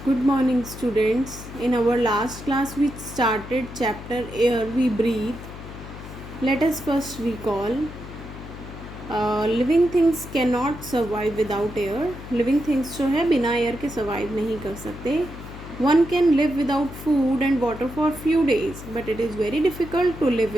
Good morning, students. In our last class, we started chapter Air We Breathe. Let us first recall living things cannot survive without air. Living things जो है बिना air के survive नहीं कर सकते. One can live without food and water for few days, but it is very difficult to live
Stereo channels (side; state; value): left; noise; hum, 13 dB below the sound